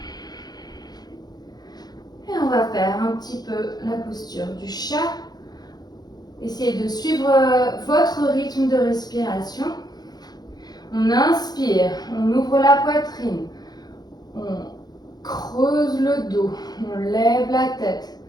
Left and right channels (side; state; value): right; late; 0.19 ms